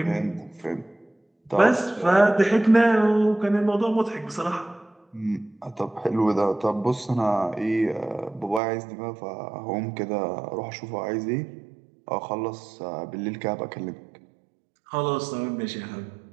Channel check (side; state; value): left; drops out; at 8.6 s